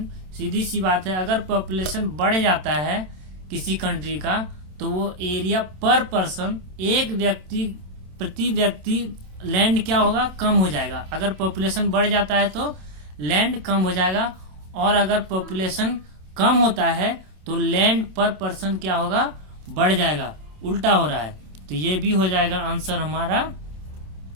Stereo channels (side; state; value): left; late; 27 ms